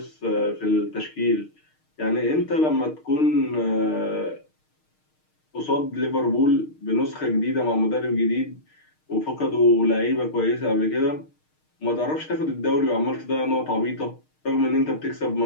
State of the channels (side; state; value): right; late; 6.5 ms